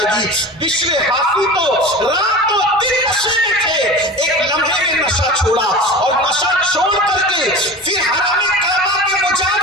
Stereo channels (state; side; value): normal; both; correlation 0.34